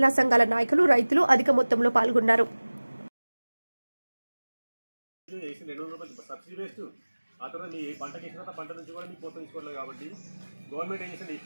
సంఘాల నాయకులు, రైతులు అధిక మొత్తంలో పాల్గొన్నారు.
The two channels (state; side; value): inverted; both; correlation -1.00